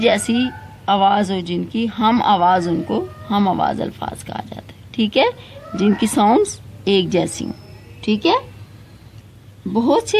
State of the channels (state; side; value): identical; both; correlation 1.00